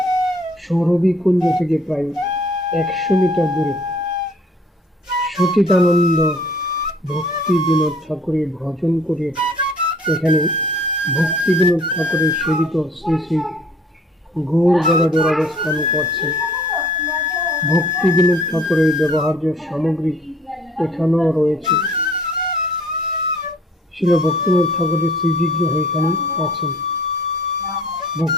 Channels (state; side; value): normal; both; correlation 0.56